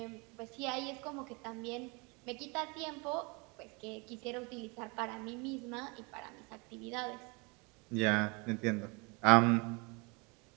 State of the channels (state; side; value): quieter; left; 29.5 dB